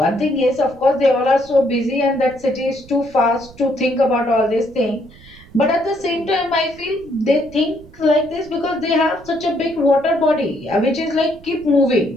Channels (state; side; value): noise; right; rumble, 22 dB below the sound